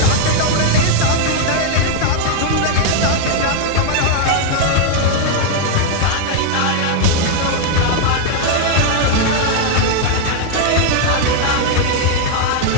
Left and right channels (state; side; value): different; both; correlation 0.00